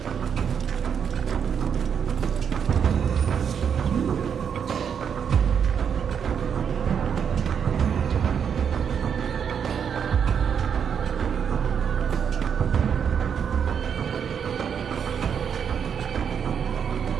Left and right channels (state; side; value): quieter; left; 7.5 dB